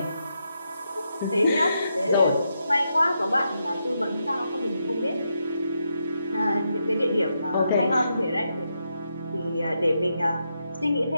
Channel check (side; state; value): both; inverted; correlation -0.83